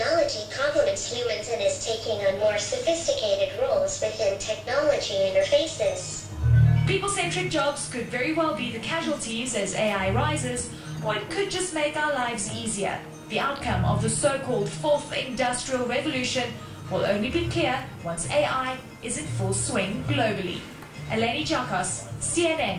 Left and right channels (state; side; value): identical; both; correlation 1.00